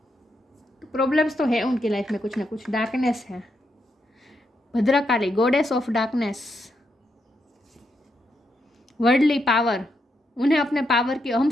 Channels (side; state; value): both; normal; correlation 0.81